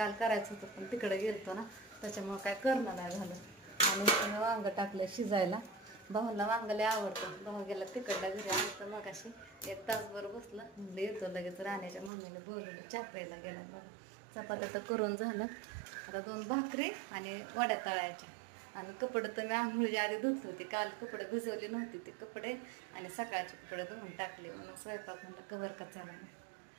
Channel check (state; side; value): drops out; left; at 12.1 s